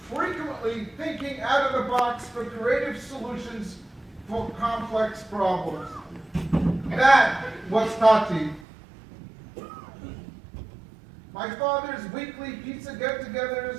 frequently thinking out of the box for creative solutions for complex problems. That was Tati. My father's weekly pizza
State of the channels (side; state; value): left; drops out; at 8.7 s